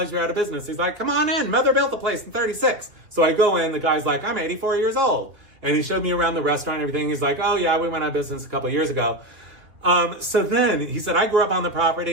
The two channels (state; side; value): late; left; 2.8 ms